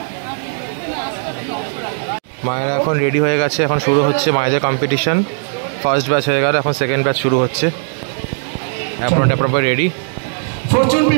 মায়েরা এখন রেডি হয়ে গেছে, এখন শুরু হচ্ছে মায়েদের কম্পিটিশন। ফার্স্ট ব্যাচ হয়ে গেল, এখন সেকেন্ড ব্যাচ শুরু হচ্ছে। Apron ready, Fortune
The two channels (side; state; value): left; silent; digital silence